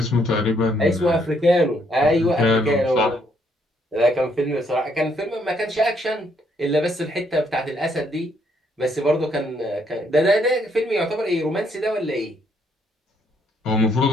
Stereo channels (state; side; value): normal; both; correlation 0.71